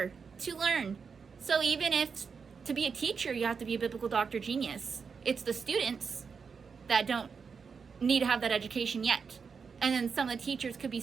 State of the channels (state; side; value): quieter; left; 5.7 dB